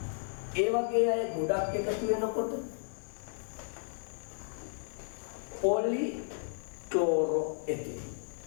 ඒ වගේ අය ගොඩක් එකතු වෙනකොට පොලි ක්ලෝරෝ එතින්.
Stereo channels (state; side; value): silent; right; digital silence